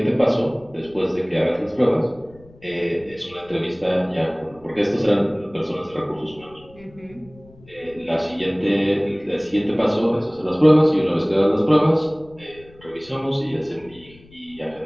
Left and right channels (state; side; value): noise; left; rumble, 25 dB below the sound